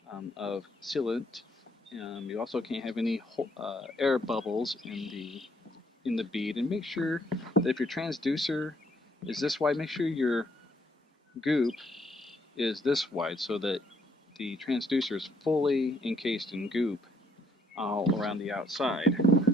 of sealant. You also can't have any air bubbles in the bead, and make sure that if your transducer is this wide, make sure your goop is this wide so that the transducer is fully encased in goop all around the outside.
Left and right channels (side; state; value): both; normal; correlation 0.69